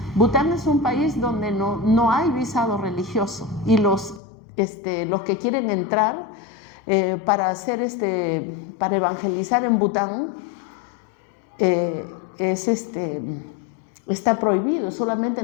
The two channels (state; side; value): drops out; right; at 4.2 s